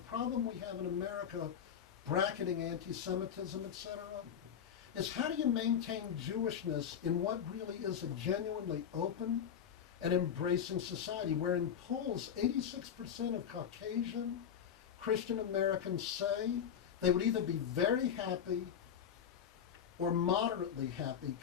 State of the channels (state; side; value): quieter; right; 8.5 dB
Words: we have in America, bracketing anti-Semitism, etc., is how do you maintain Jewishness in what really is a genuinely open and embracing society, where in polls 86% of Caucasian Christian Americans say they would either be very happy or moderately happy,